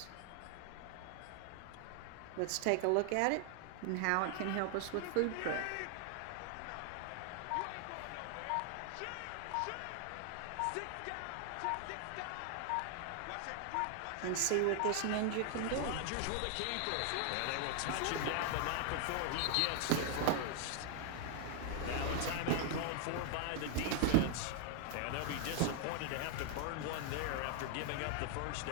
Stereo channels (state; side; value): different; both; correlation 0.00